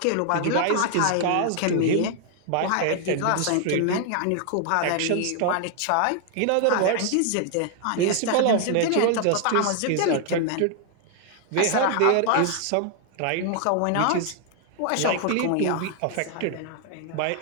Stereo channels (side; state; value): both; different; correlation 0.00